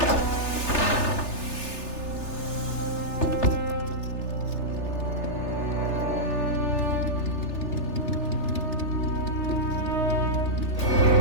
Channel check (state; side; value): late; right; 3.3 ms